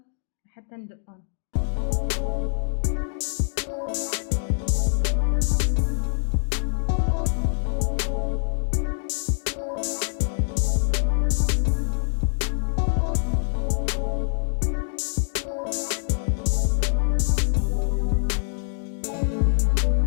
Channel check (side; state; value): right; silent; digital silence